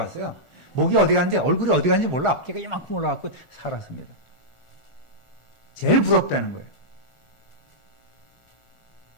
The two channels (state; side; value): late; right; 1.4 ms